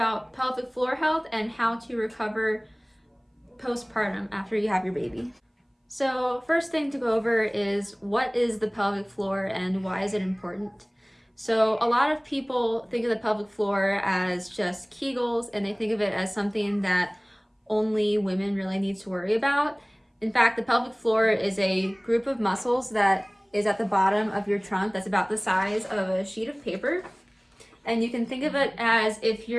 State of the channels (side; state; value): both; identical; correlation 1.00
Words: pelvic floor health and how to recover postpartum after you have your baby. So first thing to go over is what is the pelvic floor and why is it important? So a lot of people think of the pelvic floor as just Kegels, and they think of it as something that only women really need to worry about. In fact, the pelvic floor is a group of muscles that is at the bottom of your trunk that's about the size of a sheet of paper. And you can think of it as if